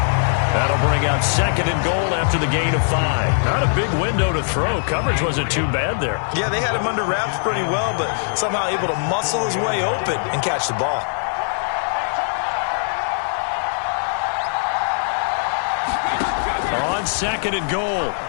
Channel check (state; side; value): silent; right; digital silence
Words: That'll bring up 2nd and goal after the gain of 5. Not a big window to throw. Coverage wasn't too bad there. Yeah, they had him under wraps pretty well, but somehow able to muscle his way open and catch the ball. On 2nd and goal,